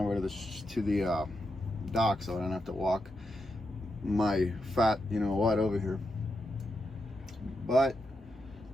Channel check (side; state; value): both; normal; correlation 0.85